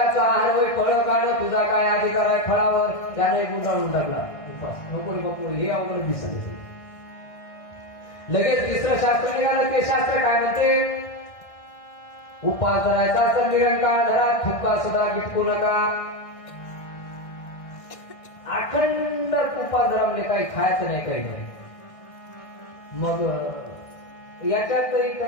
आहार होय फळं काढणं, तुझा काय अधिकार आहे फळावर? त्याने गुंडाळून टाकला उपास. नको रे हे अवघड दिसत. लगेच तिसरं शास्त्र निघालं, ते शास्त्र काय म्हणते? उपास धरायचा तर निरंकाळ धरा, थुका सुद्धा गिटकू नका. अखंड उपास धरा, म्हणजे काही खायचं नाही, काही नाही. मग याच्यात तरी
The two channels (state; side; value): late; right; 1.6 ms